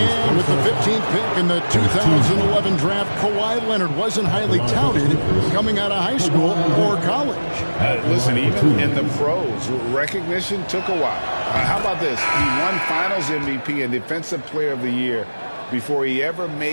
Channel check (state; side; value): inverted; both; correlation -1.00